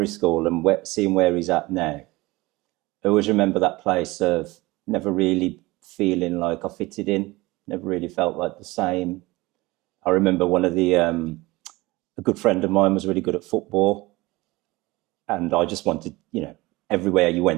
school and seeing where he's at now, I always remember that place of never really feeling like I fitted in, never really felt like the same. I remember one of a good friend of mine was really good at football, and I just wanted, you know, everywhere you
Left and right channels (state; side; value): quieter; left; 21.2 dB